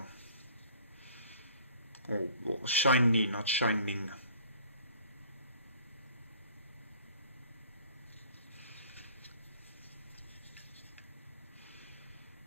Oh, shiny, not shining.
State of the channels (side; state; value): both; inverted; correlation -0.53